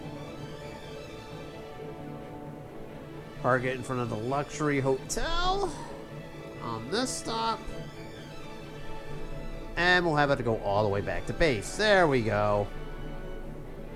Park it in front of the luxury hotel on this stop. And we'll have it go all the way back to base. There we go.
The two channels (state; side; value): identical; both; correlation 1.00